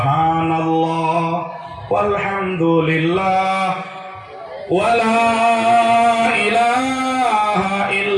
walhamdulillah wala ilaha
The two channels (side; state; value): both; identical; correlation 1.00